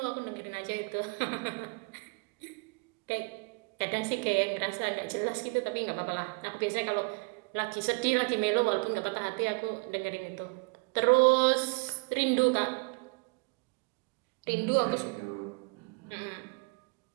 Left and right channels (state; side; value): quieter; left; 31.4 dB